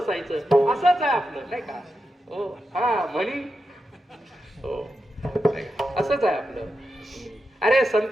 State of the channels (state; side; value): normal; both; correlation 0.88